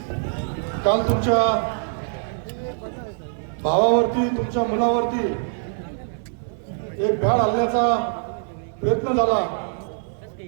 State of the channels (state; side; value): silent; left; digital silence